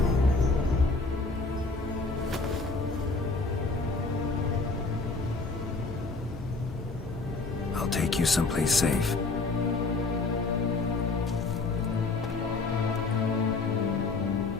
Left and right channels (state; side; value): quieter; right; 3.8 dB